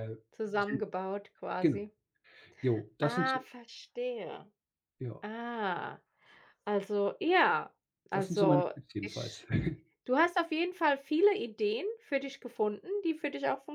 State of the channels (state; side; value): identical; both; correlation 1.00